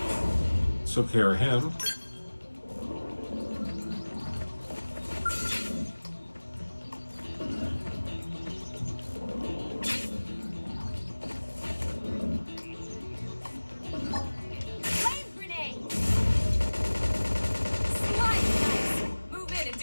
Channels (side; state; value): both; inverted; correlation -1.00